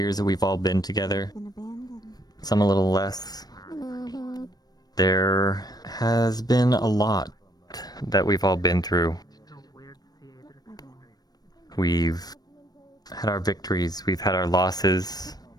that we've all been together. Some a little less, There has been a lot that we've all been through. We've had our victories, we've had our losses.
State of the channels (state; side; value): late; right; 0.19 ms